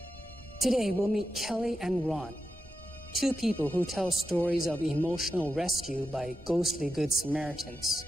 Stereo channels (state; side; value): normal; both; correlation 0.89